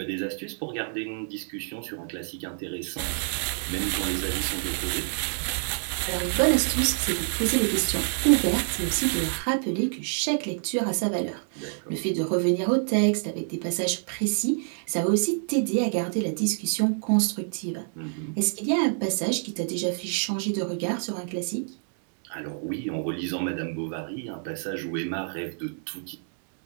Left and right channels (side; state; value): left; silent; digital silence